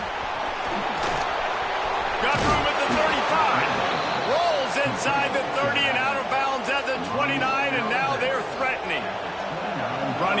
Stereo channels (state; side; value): identical; both; correlation 1.00